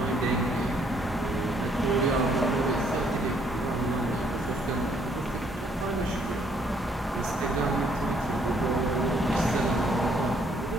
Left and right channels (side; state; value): both; normal; correlation 0.67